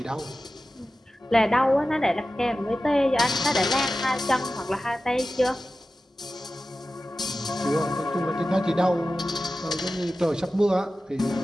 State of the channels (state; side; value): normal; both; correlation 0.94